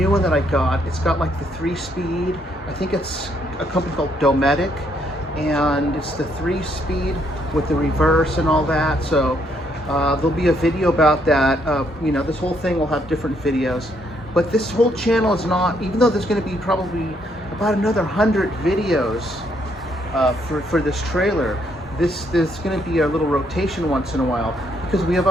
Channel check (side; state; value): both; normal; correlation 0.72